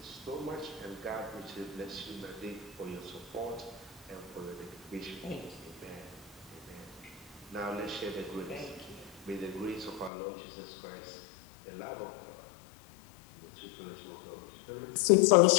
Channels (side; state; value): right; drops out; at 10.1 s